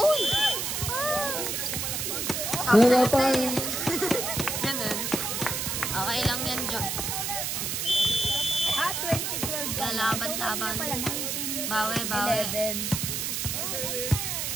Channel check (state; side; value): noise; right; hiss, 1 dB below the sound